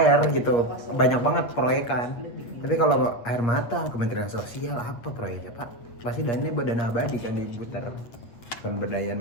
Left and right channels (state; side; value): late; right; 8.6 ms